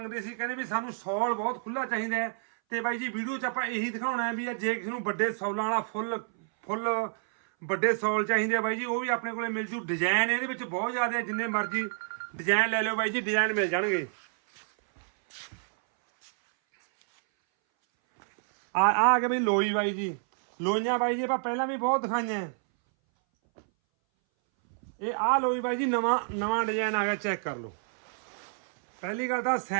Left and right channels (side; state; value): left; silent; 59 dB below the other